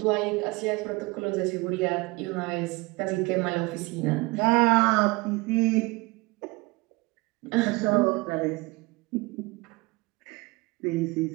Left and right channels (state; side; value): quieter; left; 24.6 dB